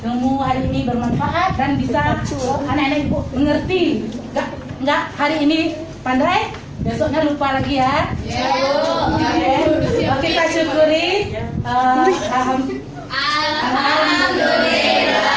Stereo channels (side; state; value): both; identical; correlation 1.00